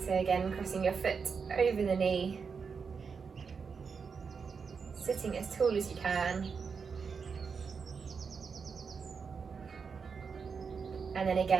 So again, crossing your foot over the knee, sitting as tall as you can. And then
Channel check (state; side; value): quieter; left; 5.6 dB